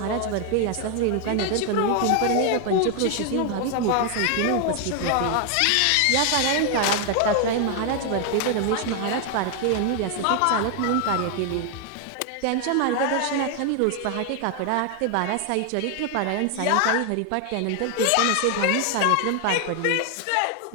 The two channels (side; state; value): both; different; correlation 0.00